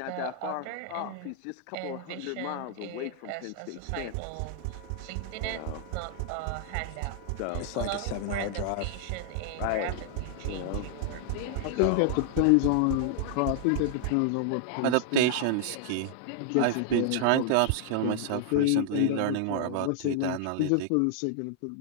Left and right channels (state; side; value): different; both; correlation -0.01